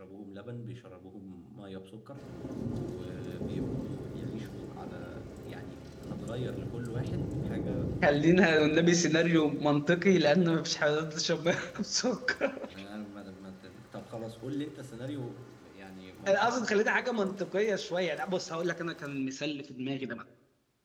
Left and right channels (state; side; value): identical; both; correlation 1.00